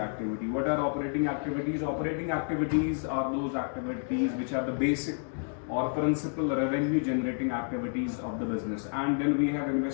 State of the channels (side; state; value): right; silent; 58 dB below the other